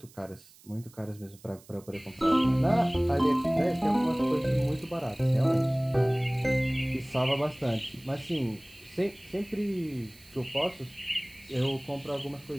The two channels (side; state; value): right; noise; hiss, 25 dB below the sound